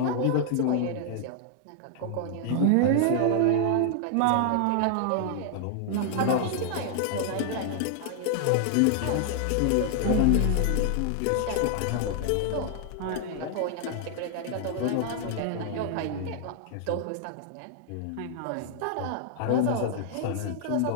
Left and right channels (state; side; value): different; both; correlation 0.00